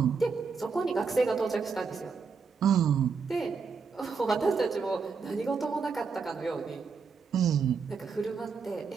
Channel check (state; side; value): quieter; left; 5.3 dB